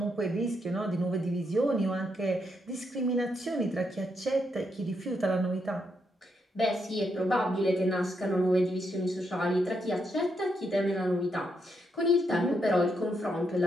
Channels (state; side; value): normal; both; correlation 0.79